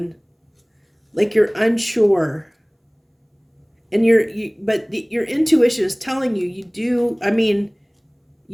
like you're unsure. And your intuition is telling you, you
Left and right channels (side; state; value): both; identical; correlation 1.00